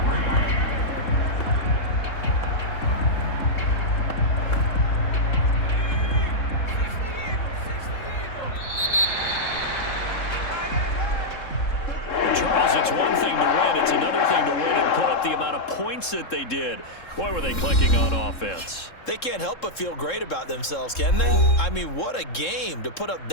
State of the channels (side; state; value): right; late; 3.7 ms